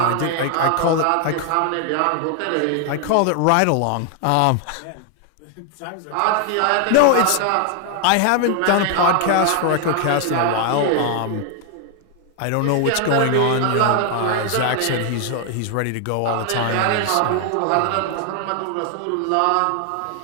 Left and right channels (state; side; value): different; both; correlation 0.00